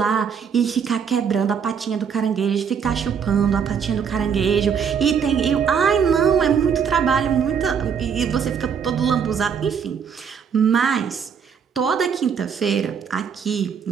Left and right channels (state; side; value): quieter; left; 7.0 dB